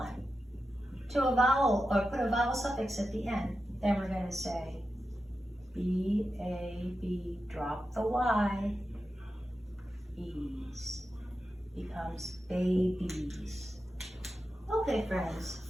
to a vowel, or put a vowel suffix at the end. Then we're going to say B-A-B, drop the Y, E's, becomes babies. Okay, friends,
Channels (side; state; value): both; normal; correlation 0.91